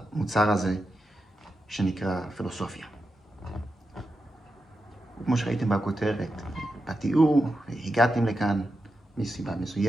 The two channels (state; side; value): normal; both; correlation 0.89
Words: הזה שנקרא פילוסופיה. כמו שראיתם בכותרת, בתיאור, הגעתם לכאן מסיבה